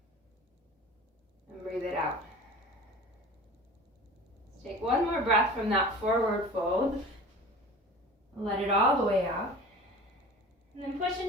and breathe it out. Let's take one more breath from that forward fold. Let it all the way out. And then push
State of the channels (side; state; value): both; normal; correlation 0.39